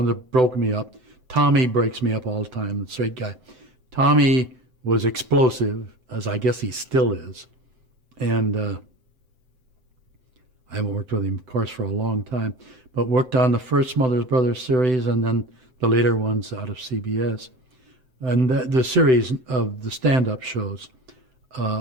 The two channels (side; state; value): left; late; 7.8 ms